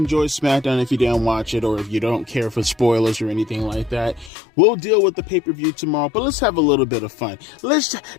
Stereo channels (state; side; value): drops out; right; at 4.3 s